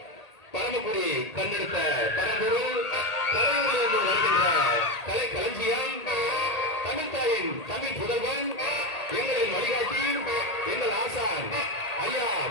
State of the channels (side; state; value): right; late; 1.8 ms